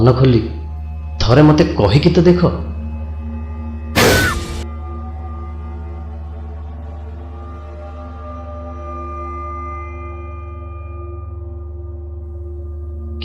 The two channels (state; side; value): identical; both; correlation 1.00